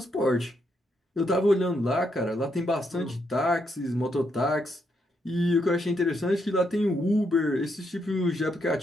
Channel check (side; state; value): both; normal; correlation 0.78